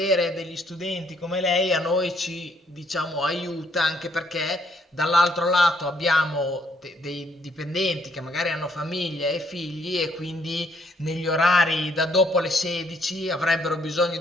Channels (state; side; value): normal; both; correlation 0.69